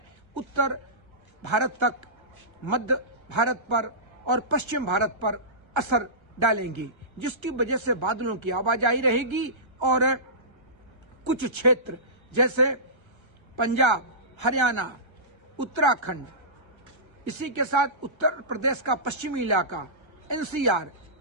उत्तर भारत तक, मध्य भारत पर और पश्चिम भारत पर असर डालेंगी, जिसकी वजह से बादलों की आवाजाही रहेगी और कुछ क्षेत्र जैसे पंजाब, हरियाणा, उत्तराखंड, इसी के साथ उत्तर प्रदेश का पश्चिमी इलाका, एनसीआर,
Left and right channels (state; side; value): late; left; 1.3 ms